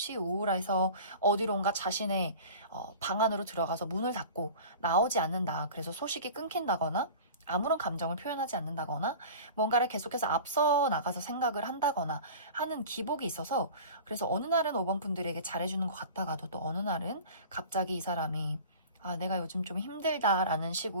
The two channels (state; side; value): inverted; both; correlation -0.38